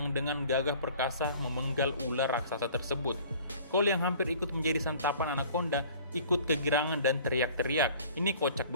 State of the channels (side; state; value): both; inverted; correlation -0.49